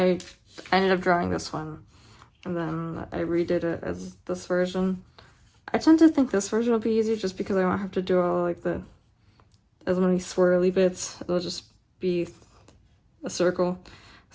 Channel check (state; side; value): identical; both; correlation 1.00